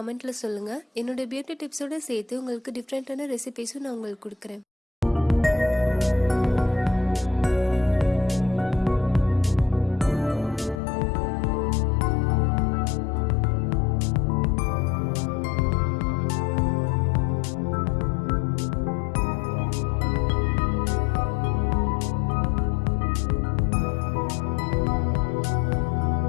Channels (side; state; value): right; drops out; at 10.8 s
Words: சொல்லுங்கள். என்னோட பியூட்டி டிப்ஸோடு சேர்த்து உங்களுக்கு டிஃப்ரெண்ட்டான ரெசிபிஸும் நான் உங்களுக்கு கொடுக்குறேன்.